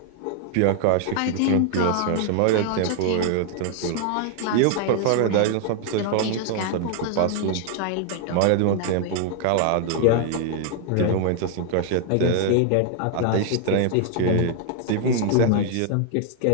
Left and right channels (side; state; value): both; different; correlation 0.00